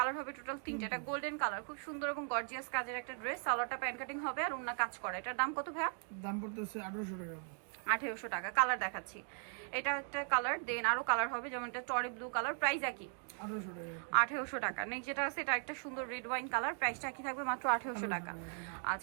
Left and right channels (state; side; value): silent; left; 52 dB below the other